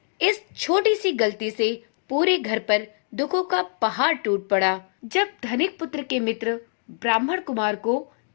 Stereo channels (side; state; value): right; silent; 62 dB below the other